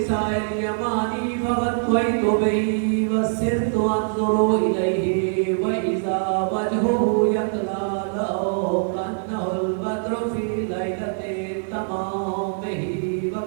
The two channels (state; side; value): silent; left; 60 dB below the other